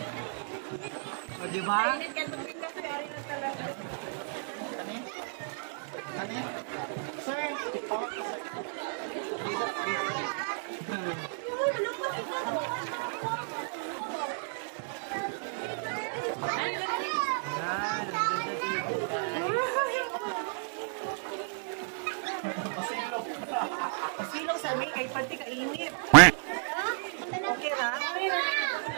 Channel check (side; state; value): left; silent; digital silence